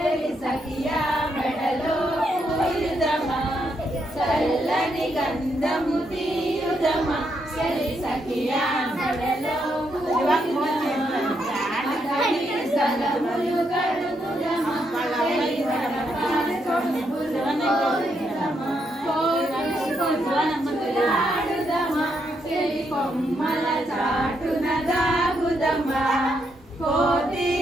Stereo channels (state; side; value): normal; both; correlation 0.78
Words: సఖియా మెడలో పూయుదమా చల్లని గంధము తీయుదమా చెలి సఖియా మెడలో స్థలములు కడుగుదమా ఆడుదమా చెలి కొమ్మల చాటున దాగుదమా కోతి